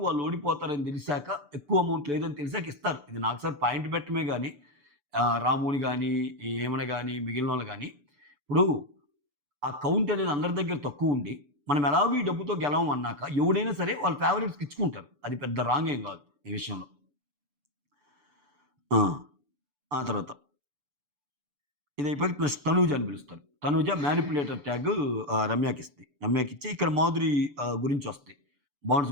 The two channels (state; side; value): late; left; 6.9 ms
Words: వాళ్ళు ఓడిపోతారని తెలిసాక, ఎక్కువ అమౌంట్ లేదని తెలిసాక ఇస్తారు. ఇది నాకు సార్ పాయింట్ పెట్టడమే గాని, రాముని గాని, ఏమన గాని, మిగిలినోళ్ళు గాని, ఇప్పుడు ఆ కౌంట్ అనేది అందరి దగ్గర తక్కువుండి, మనం ఎలాగో ఈ డబ్బుతో గెలవం అన్నాక, ఎవడైనా సరే వాళ్ళ ఫేవరెట్స్‌కి ఇచ్చుకుంటారు. అది పెద్ద రాంగ్ ఏం గాదు ఈ విషయంలో. ఆ! ఆ తర్వాత ఇదయిపోయాక ప్లస్ తనూజ అని పిలుస్తారు. తనూజ మ్యానిప్యులేటర్ ట్యాగ్ రమ్యకిస్తది. రమ్యకిచ్చి ఇక్కడ మాధురి గురించొస్తాయి. బాండ్స్